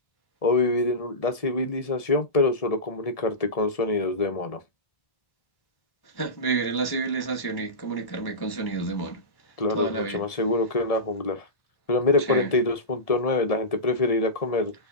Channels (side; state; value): right; late; 1.7 ms